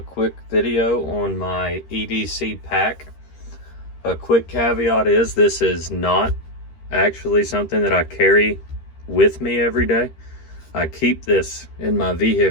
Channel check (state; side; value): late; right; 13 ms